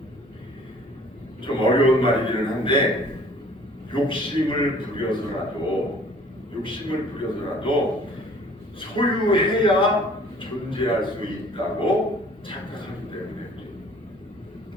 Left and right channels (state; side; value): normal; both; correlation 0.53